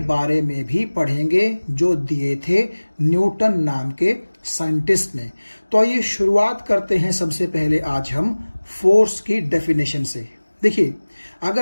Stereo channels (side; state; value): both; inverted; correlation -1.00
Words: बारे में भी पढ़ेंगे जो दिए थे न्यूटन नाम के साइंटिस्ट ने। तो आइए शुरुआत करते हैं सबसे पहले आज हम फोर्स की डेफिनेशन से। देखिए,